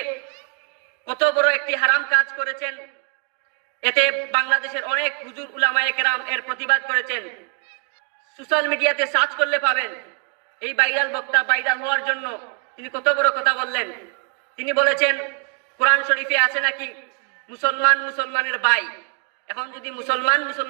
কত বড় একটি হারাম কাজ করেছেন। এতে বাংলাদেশের অনেক হুজুর উলামায়ে কেরাম এর প্রতিবাদ করেছেন। সোশ্যাল মিডিয়াতে সার্চ করলে পাবেন এই ভাইরাল বক্তা ভাইরাল হওয়ার জন্য তিনি কত বড় কথা বললেন। তিনি বলেছেন, কোরআন শরীফে আছে নাকি মুসলমান মুসলমানের ভাই। এখন যদি মুসলমান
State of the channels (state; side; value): quieter; left; 38.3 dB